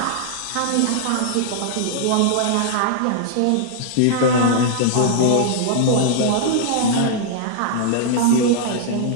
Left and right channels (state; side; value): different; both; correlation -0.01